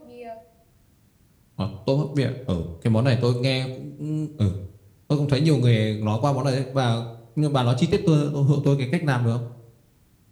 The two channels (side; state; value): both; identical; correlation 1.00